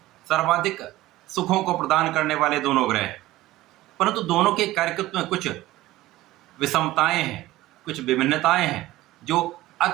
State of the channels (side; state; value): left; quieter; 16.8 dB